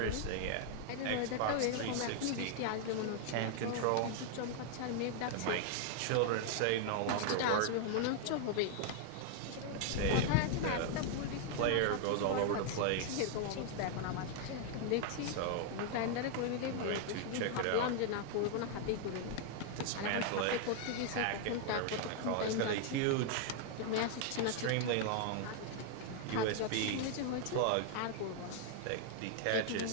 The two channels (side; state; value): both; different; correlation 0.00